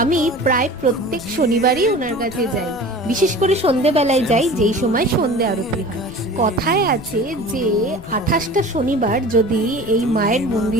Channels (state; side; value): noise; left; rumble, 19 dB below the sound